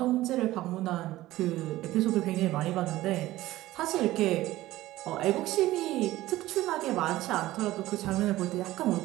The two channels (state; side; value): quieter; left; 16.4 dB